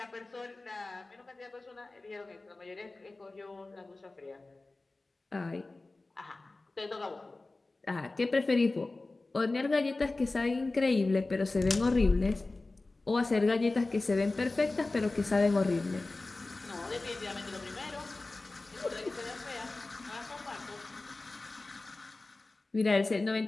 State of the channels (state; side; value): quieter; right; 3.2 dB